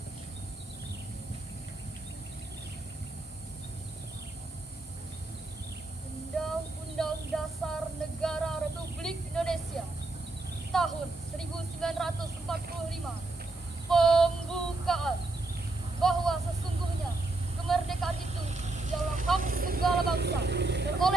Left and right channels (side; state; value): left; quieter; 3.1 dB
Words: Undang-Undang Dasar Negara Republik Indonesia tahun 1945 pembukaan bahwa sesungguhnya kemerdekaan itu ialah hak segala bangsa, dan